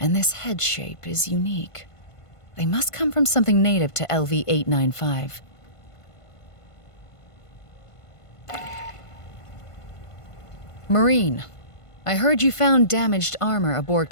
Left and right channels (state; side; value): late; right; 1.5 ms